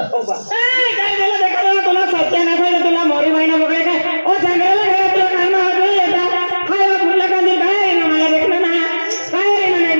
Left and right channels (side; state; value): both; inverted; correlation -1.00